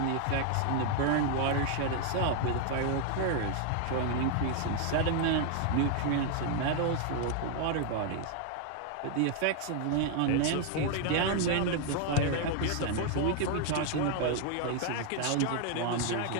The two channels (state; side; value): different; both; correlation 0.00